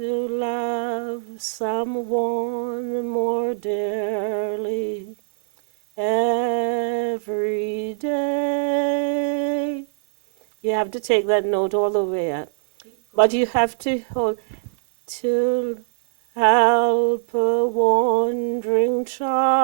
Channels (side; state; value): left; silent; 62 dB below the other